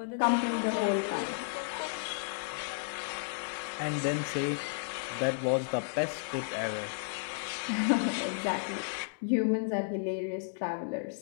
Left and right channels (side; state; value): right; silent; digital silence